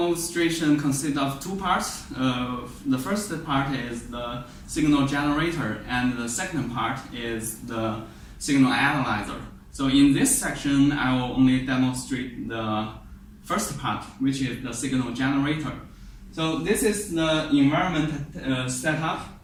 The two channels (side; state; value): both; identical; correlation 1.00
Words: consists of two parts. The first part is the signal generator, and the second part is the signal analyzer. So in this section, I will only demonstrate the first part, which is the signal generator. So this is the environment setup.